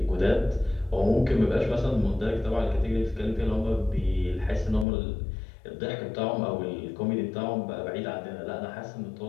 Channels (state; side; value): drops out; right; at 4.9 s